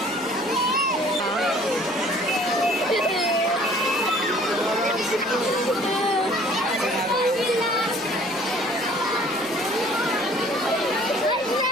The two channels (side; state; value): right; noise; hum, 28 dB below the sound